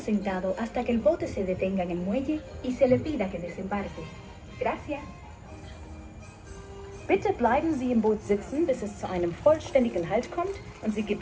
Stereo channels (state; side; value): identical; both; correlation 1.00